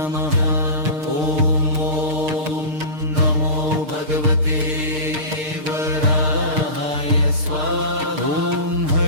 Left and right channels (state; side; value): late; left; 6.6 ms